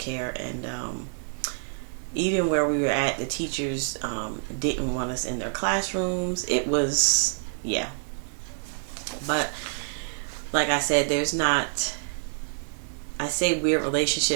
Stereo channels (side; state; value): left; silent; digital silence